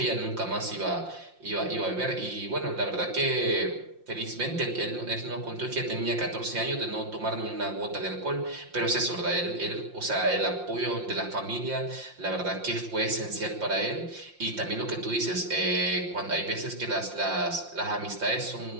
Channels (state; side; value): late; left; 5.7 ms